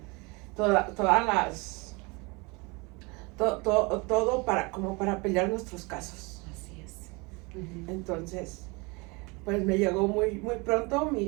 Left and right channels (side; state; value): left; quieter; 27.6 dB